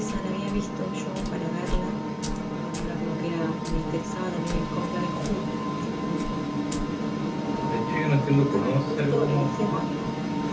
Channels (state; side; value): identical; both; correlation 1.00